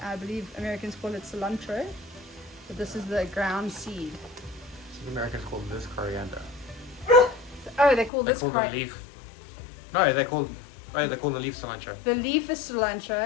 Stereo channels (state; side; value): drops out; right; at 8.1 s